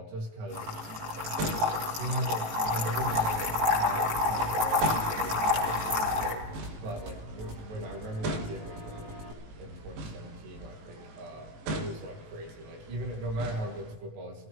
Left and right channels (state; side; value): late; left; 18 ms